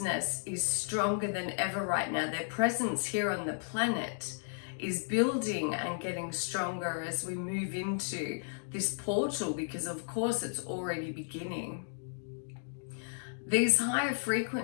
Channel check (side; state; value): right; silent; digital silence